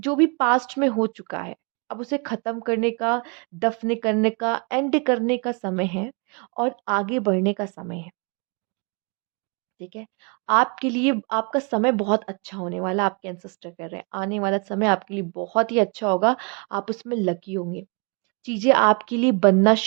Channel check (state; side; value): quieter; left; 33.9 dB